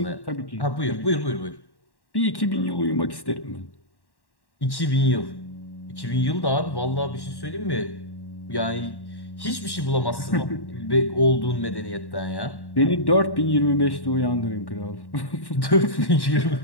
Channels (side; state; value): right; late; 1.1 ms